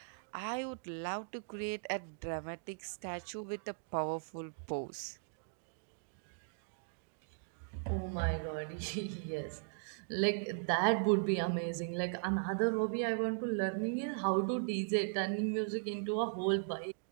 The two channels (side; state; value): left; silent; digital silence